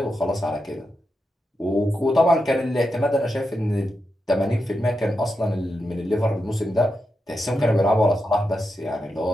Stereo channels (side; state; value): both; normal; correlation 0.87